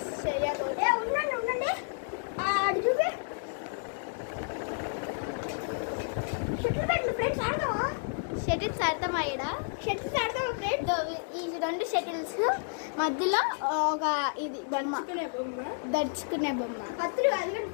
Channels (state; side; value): silent; right; digital silence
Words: చేయకూడదు. ఉండండి అది చూపి. షటిల్ పెట్టు ఫ్రెండ్స్. ఆడతావా? షటిల్స్ ఆడతామా? షటిల్స్ ఆడతావా ఫ్రెండ్స్? ఈ 2 షటిల్స్ మధ్యలో ఒక ఇది దడుచుకునే బొమ్మ. పత్రులు అది